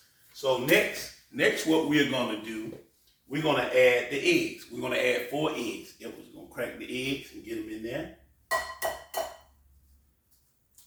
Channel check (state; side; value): identical; both; correlation 1.00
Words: So next what we're gonna do, we're gonna add the eggs. We're gonna add 4 eggs. We're gonna crack the eggs and get them in there.